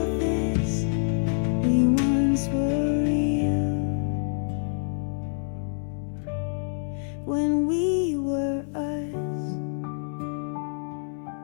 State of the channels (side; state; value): right; silent; 60 dB below the other